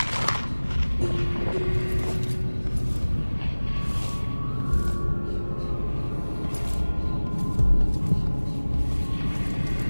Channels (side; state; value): both; inverted; correlation -1.00